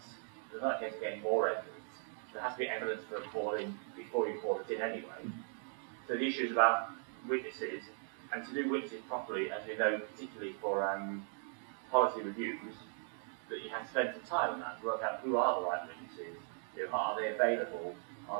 There's not a case of getting more evidence. There has to be evidence for a call-in before you call it in anyway. So the issue is about witnesses, and to do witnesses properly, as we know, particularly for policy reviews, that you have to spend some time on that to work out who are the right witnesses, are they available,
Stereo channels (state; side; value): silent; left; 52 dB below the other